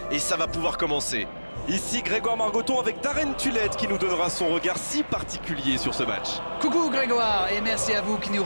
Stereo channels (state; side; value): inverted; both; correlation -1.00